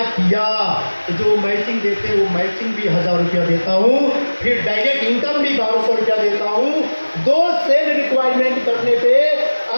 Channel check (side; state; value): both; inverted; correlation -1.00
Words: किया तो जो मैचिंग देते हैं वो मैचिंग भी 1000 रुपया देता हूँ, फिर डायरेक्ट इनकम भी 1200 रुपया देता हूँ। दो सेल रिक्वायरमेंट करने पे